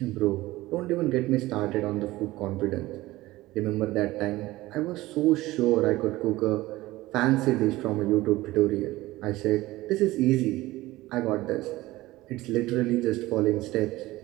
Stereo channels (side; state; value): left; quieter; 18.3 dB